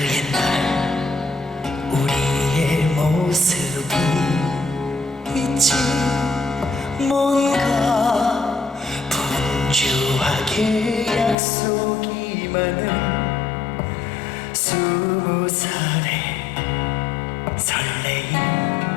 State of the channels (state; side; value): drops out; right; at 11.4 s